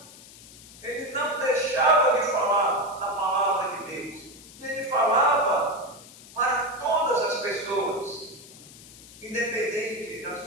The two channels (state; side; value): noise; left; hiss, 19 dB below the sound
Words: ele não deixava de falar da palavra de Deus, e ele falava para todas as pessoas, independente da